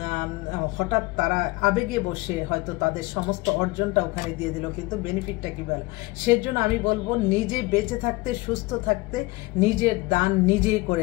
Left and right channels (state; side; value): quieter; right; 22.4 dB